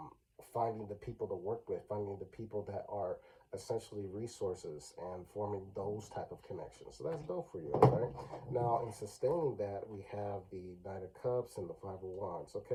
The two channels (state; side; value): identical; both; correlation 1.00